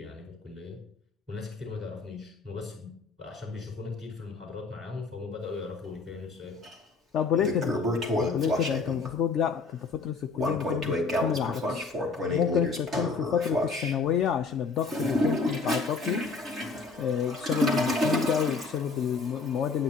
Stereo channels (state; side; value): quieter; right; 4.4 dB